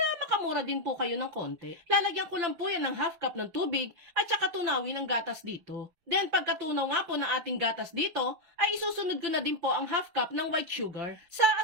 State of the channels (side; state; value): left; late; 5.9 ms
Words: makamura din po kayo ng konti. Lalagyan ko lang po yan ng half cup ng tubig at saka tunawin ng gatas dito. Then pagkatunaw nga po ng ating gatas dito, ay isusunod ko na din po ang half cup ng white sugar. Sa